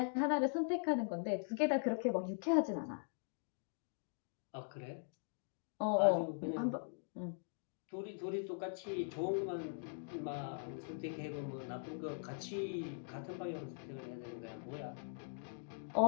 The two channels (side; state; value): right; silent; digital silence